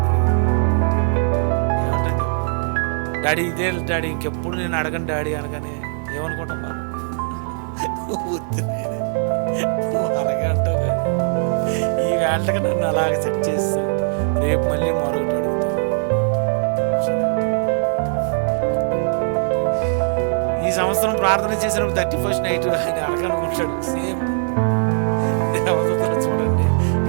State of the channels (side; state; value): left; silent; digital silence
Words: డాడీ ఇదే డాడీ, ఇంకెప్పుడు నేను అడగను డాడీ అనగానే ఏమనుకుంటాం మనం? అలాగే అంటావు. కానీ ఈ వేళకి నన్ను అలాగ సెట్ చేస్తూ రేపు మళ్ళీ మరొకటి అడుగుతాను. ఈ సంవత్సరం ప్రార్థన చేసినప్పుడు 31st నైట్ ఆయన అడగనుకుంటాడు. సేమ్ దేవతలు చూడండి,